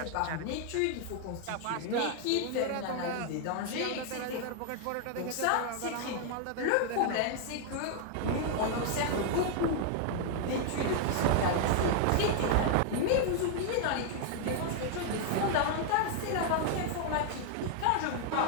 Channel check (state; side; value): different; both; correlation 0.00